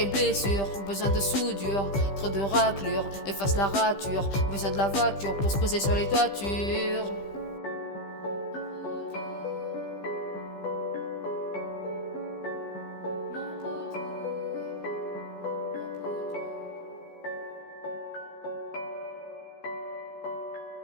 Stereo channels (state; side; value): late; right; 15 ms